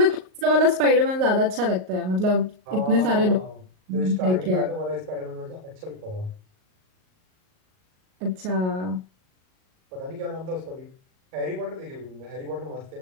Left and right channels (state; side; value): late; left; 38 ms